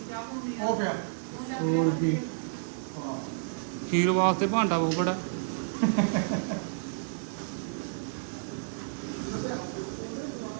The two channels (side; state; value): left; silent; digital silence